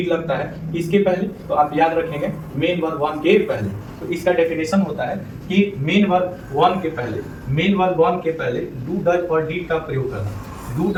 लगता है। इसके पहले तो आप याद रखेंगे मेन वर्ब वन के पहले। तो इसका डेफिनेशन होता है कि मेन वर्ब वन के पहले डू डज और डिड का प्रयोग करना। डू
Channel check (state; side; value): identical; both; correlation 1.00